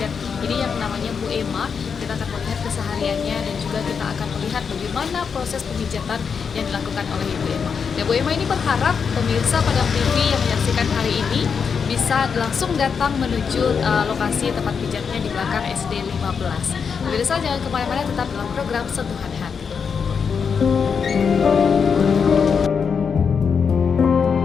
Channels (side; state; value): right; quieter; 6.2 dB